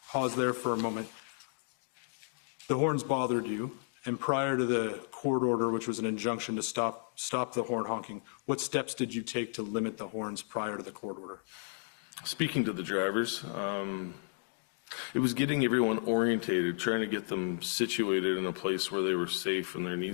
pause there for a moment. The horns bothered you, and prior to the court order, which was an injunction to stop the horn honking, what steps did you take to limit the horns prior to the court order? Speaking to the drivers, it was getting everyone orientated, trying to get them situated in a place where they were safe and their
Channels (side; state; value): right; silent; digital silence